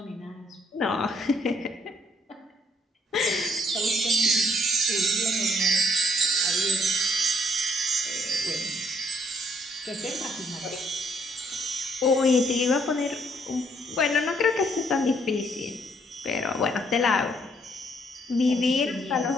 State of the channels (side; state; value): both; normal; correlation 0.68